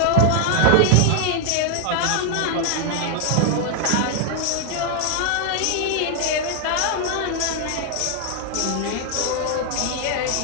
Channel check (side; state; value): both; different; correlation 0.00